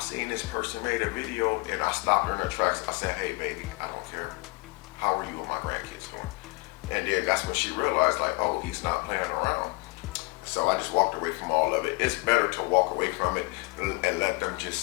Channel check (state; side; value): quieter; right; 26.3 dB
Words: this person made a video, and I stopped her in her tracks. I said, hey baby, I don't care. How are you and my grandkids doing? And then that's when she realized, like, oh, he's not playing around. So I just walked away from all of it. It's better to walk away from it and let them just